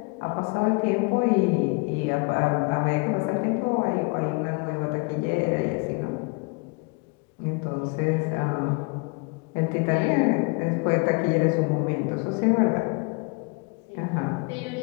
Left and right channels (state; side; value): quieter; right; 30.5 dB